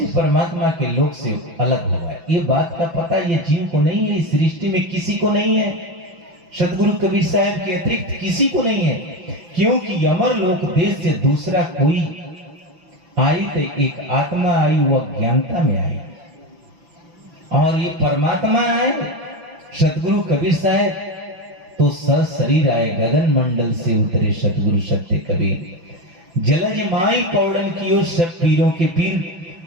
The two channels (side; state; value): left; late; 5.9 ms